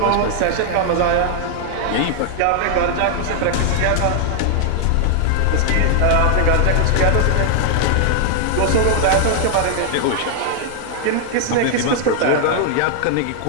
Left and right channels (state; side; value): different; both; correlation 0.00